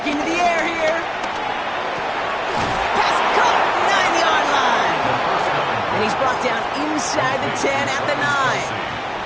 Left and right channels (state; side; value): identical; both; correlation 1.00